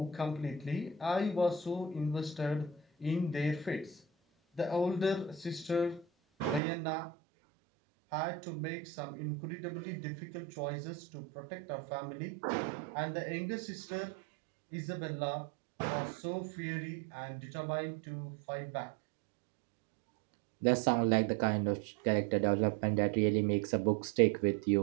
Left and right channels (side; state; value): left; drops out; at 6.6 s